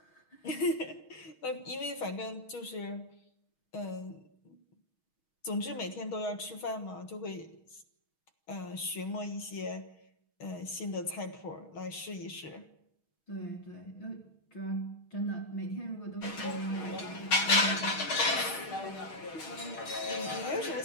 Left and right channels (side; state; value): right; late; 6.3 ms